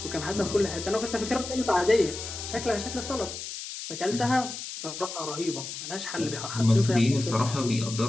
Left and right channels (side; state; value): left; noise; hiss, 8 dB below the sound